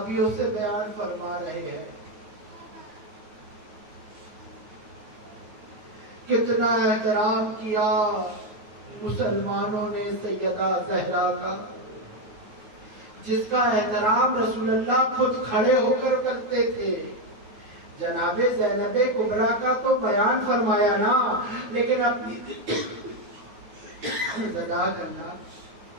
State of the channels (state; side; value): late; left; 9.3 ms